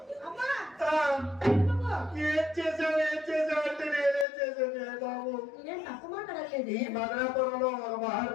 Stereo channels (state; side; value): drops out; right; at 4.2 s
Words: ఈ మదనాపురంలో ఒక